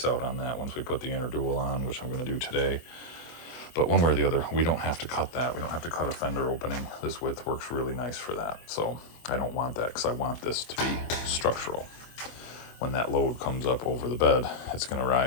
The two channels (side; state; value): right; late; 24 ms